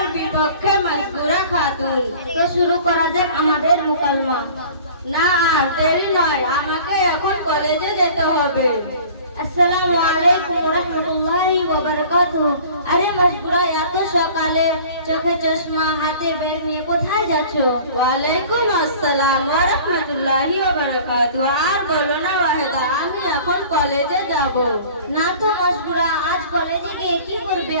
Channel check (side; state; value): both; inverted; correlation -0.46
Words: বিপক্ষে মাজবুরা খাতুন। তো শুরু করা যাক আমাদের মুকালমা। না আর দেরি নয়, আমাকে এখন কলেজে যেতে হবে। আসসালামু আলাইকুম ওয়া রাহমাতুল্লাহি ওয়া বারাকাতুহু। আরে মাজবুরা, এত সকালে চোখে চশমা হাতে ব্যাগ নিয়ে কোথায় যাচ্ছো? ওয়ালাইকুম আসসালাম ওয়া রাহমাতুল্লাহি ওয়া বারাকাতুহু। আর বলো না ওয়াহিদা, আমি এখন কলেজে যাব। না তো মাজবুরা, আজ কলেজে গিয়ে কি করবে?